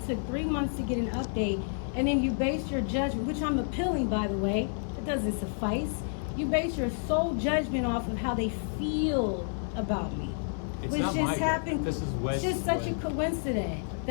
took 3 months to get an update, and then you base your judgment, which I'm appealing, by the way, it doesn't suffice. You base your sole judgment off of how they feel about me. It's which not just my happened. This is it's just such a coincidence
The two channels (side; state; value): right; silent; 58 dB below the other